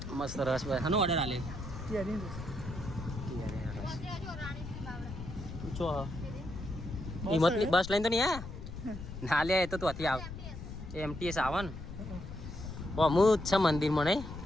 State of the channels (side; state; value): left; noise; rumble, 10 dB below the sound